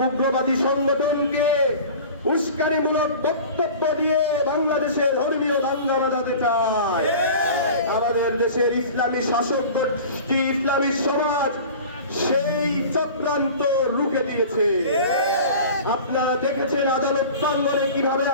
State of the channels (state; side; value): inverted; both; correlation -0.39